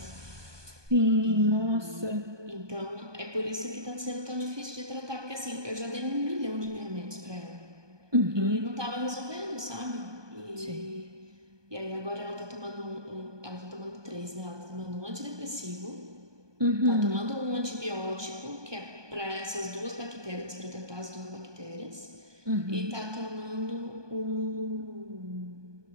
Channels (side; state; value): left; late; 1.2 ms